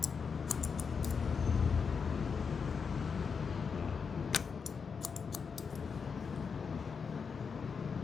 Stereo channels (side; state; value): right; quieter; 5.8 dB